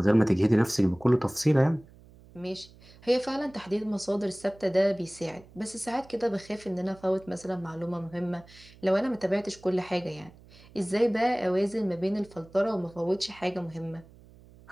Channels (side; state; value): right; noise; hum, 24 dB below the sound